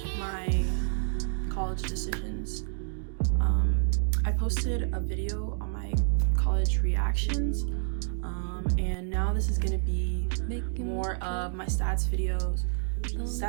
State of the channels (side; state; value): left; silent; digital silence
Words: my college decisions. I posted a video on my college reactions and now this is going to be more of my stats videos,